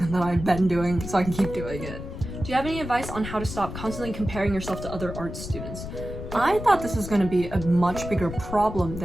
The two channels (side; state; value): left; noise; rumble, 9 dB below the sound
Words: that I've been doing so I can keep doing it. Do you have any advice on how to stop constantly comparing yourself to other art students? I thought this was going to be a much bigger problem